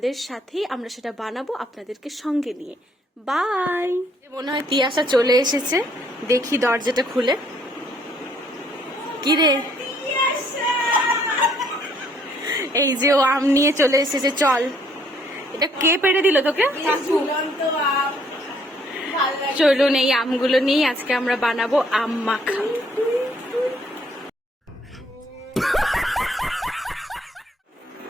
সাথেই আমরা সেটা বানাবো আপনাদেরকে সঙ্গে নিয়ে। বাই। মনে হয় তিয়াশা চলে এসেছে, দেখি দরজাটা খুলে। কি রে? এই যে ও আম নিয়ে চলে এসেছে, চল। এটা কে পেড়ে দিল তোকে? চলুন এই আমগুলো নিয়ে আজকে আমরা বানাবো আম মাখা।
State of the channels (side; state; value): both; normal; correlation 0.65